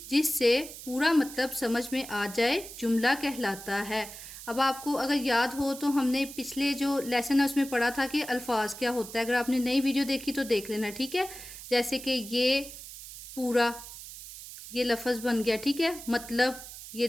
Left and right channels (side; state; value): right; noise; hiss, 13 dB below the sound